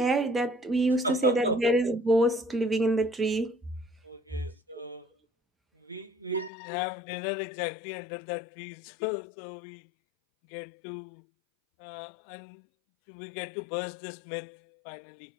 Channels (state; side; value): drops out; right; at 6.5 s